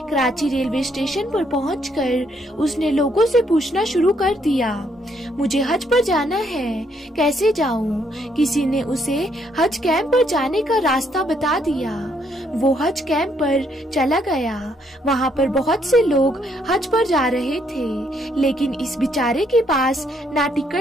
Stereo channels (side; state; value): both; normal; correlation 0.71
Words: कराची रेलवे स्टेशन पर पहुँचकर उसने लोगों से पूछना शुरू कर दिया, मुझे हज पर जाना है, कैसे जाऊँ? किसी ने उसे हज कैंप पर जाने का रास्ता बता दिया। वो हज कैंप पर चला गया। वहाँ पर बहुत से लोग हज पर जा रहे थे, लेकिन इस बेचारे के पास ना